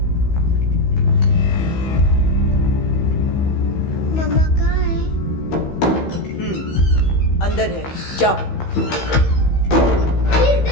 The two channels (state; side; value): late; right; 15 ms